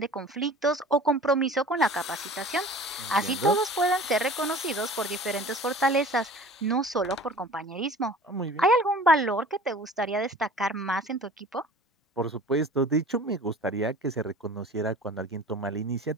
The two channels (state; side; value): normal; both; correlation 0.43